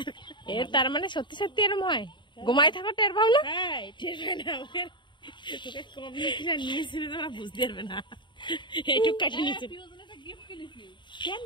এর তার মানে সত্যি সত্যি এরম হয়? ঘুমায় থাকো টের পাও না? টের পাই না, ওকে কম নিয়েছিল তোরা বুঝতে পারবে না। এইটুক কাটে নিয়েছিল কেন?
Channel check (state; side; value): late; right; 0.23 ms